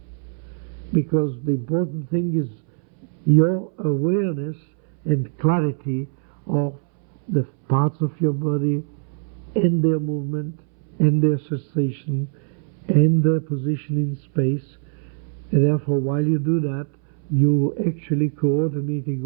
Because the important thing is your awareness and clarity of the parts of your body and their movement and their sensation and their position in space. And therefore, while you do that, you actually coordinating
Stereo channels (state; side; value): silent; left; 64 dB below the other